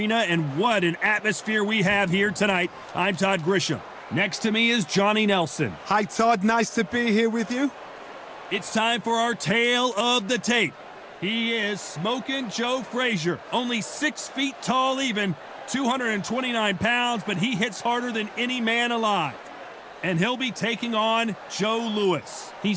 and what an atmosphere we have here tonight. I'm Todd Grisham. Next to me is Johnny Nelson. Hi, Todd. Nice to be here with you. It's time for our tale of the tape. He is Smokin' Joe Frazier, only 6 feet tall even, 229 pounds, but he hits harder than any man alive. And he'll be taking on Joe Lewis.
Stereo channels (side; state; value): both; identical; correlation 1.00